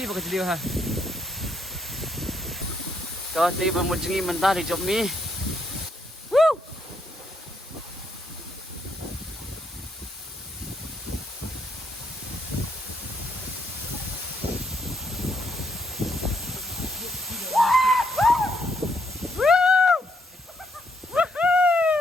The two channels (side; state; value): both; normal; correlation 0.75